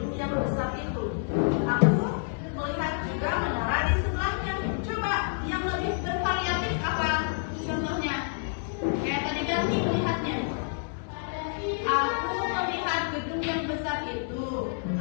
yang besar itu, aku melihat juga menara di sebelahnya. Coba yang lebih bervariatif apa contohnya? Kayak tadi ganti melihatnya. Aku melihat gedung yang besar itu,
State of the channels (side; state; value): right; silent; digital silence